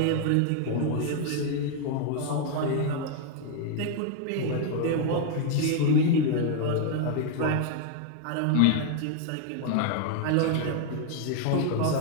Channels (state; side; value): different; both; correlation 0.00